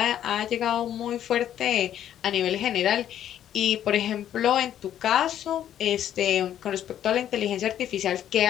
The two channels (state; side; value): quieter; right; 10.8 dB